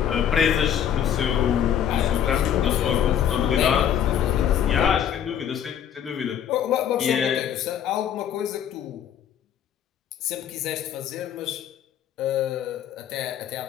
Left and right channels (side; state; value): right; quieter; 9.4 dB